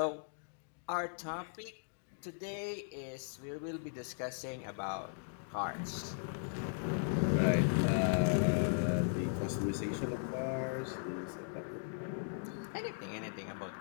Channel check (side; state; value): right; silent; digital silence